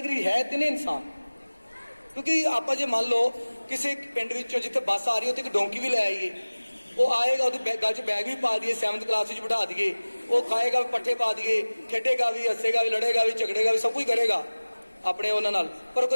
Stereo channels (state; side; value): inverted; both; correlation -1.00